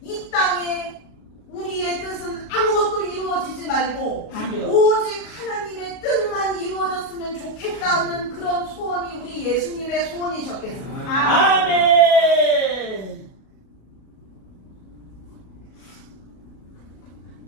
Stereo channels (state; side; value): late; right; 37 ms